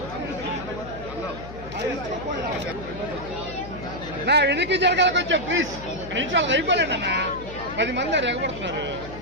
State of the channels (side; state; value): left; noise; hum, 13 dB below the sound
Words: నా వెనక్కి జరగాలి కొంచెం ప్లీజ్. నిమిషాలు అయిపోలేండి అన్న. 10 మంది ఎగబడుతున్నారు